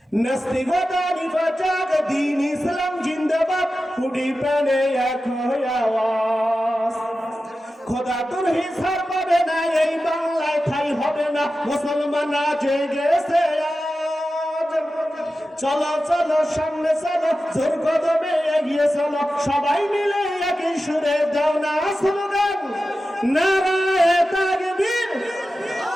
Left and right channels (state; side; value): normal; both; correlation 0.93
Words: নাস্তিকতা নিফাক দ্বীন ইসলাম জিন্দাবাদ, ফুটি প্রাণে এক হয়ে আওয়াজ। খোদা তোর হিসাব পাবে না, এই বাংলায় ঠাই হবে না, মুসলমান জেগে গেছে আজ। চলো চলো সামনে চলো, জোর কদমে এগিয়ে চলো, সবাই মিলে একই সুরে দাও না স্লোগান, নারায়ে তাকবীর।